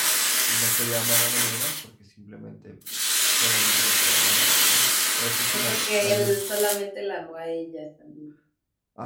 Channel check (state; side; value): identical; both; correlation 1.00